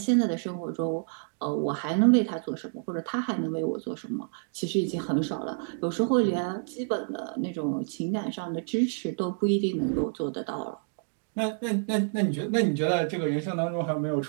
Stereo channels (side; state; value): left; silent; digital silence